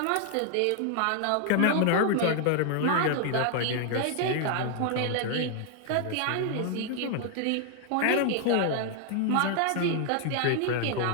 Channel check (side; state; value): both; different; correlation 0.00